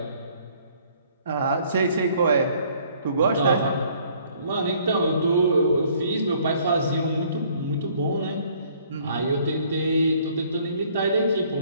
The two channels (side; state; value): both; inverted; correlation -0.60